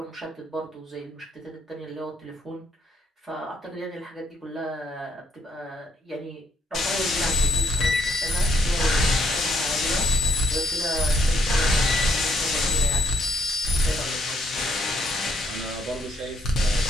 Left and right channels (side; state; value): both; normal; correlation 0.71